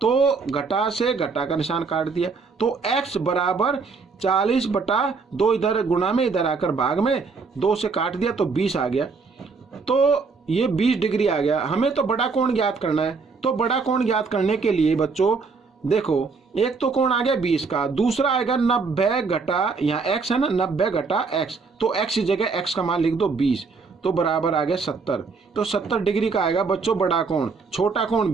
घटा से घटा का निशान काट दिया। तो x बराबर 40 बटा 2, इधर गुणा में, इधर आकर भाग में, 2 से काट दिया तो 20 आ गया। तो ये 20 डिग्री आ गया। हमें तो बड़ा कोण ज्ञात करना है, तो बड़ा कोण ज्ञात करने के लिए बच्चों देखो, एक तो कोण आ गया 20 का, दूसरा आएगा 90 घटा, यहाँ x है ना, 90 घटा x, तो x की जगह x का मान लिख दो 20, तो बराबर आ गया 70। तो 70 डिग्री का आएगा बच्चों बड़ा कोण। छोटा कोण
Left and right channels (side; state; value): left; quieter; 4.7 dB